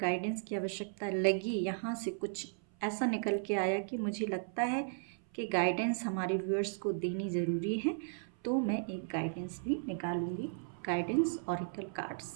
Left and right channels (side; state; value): left; silent; 54 dB below the other